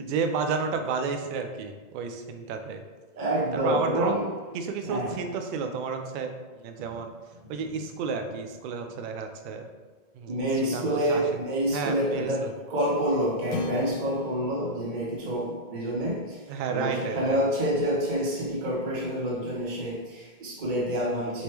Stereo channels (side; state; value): left; late; 2.2 ms